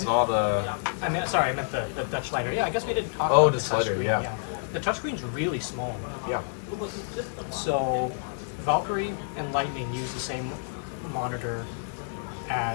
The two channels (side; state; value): right; silent; digital silence